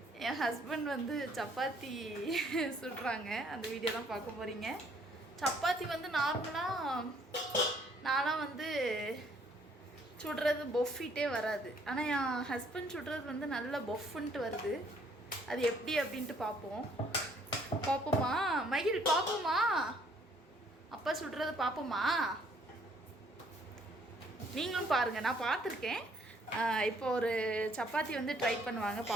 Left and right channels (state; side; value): normal; both; correlation 0.64